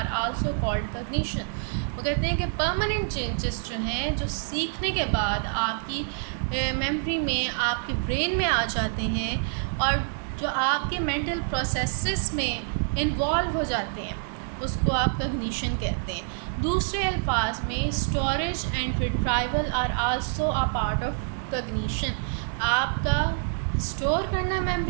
also called cognition. वो कहते हैं कि परमानेंट चेंजेस जो हैं, जो सीखने के बाद आपकी मेमोरी में, आपके ब्रेन में आ जाते हैं और जो आपके मेंटल प्रोसेसेस में इन्वॉल्व हो जाते हैं, उसको आप कॉग्निशन कहते हैं। दूसरे अल्फाज में storage and retrieval are also a part of cognition. आपका स्टोर करना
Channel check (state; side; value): silent; left; digital silence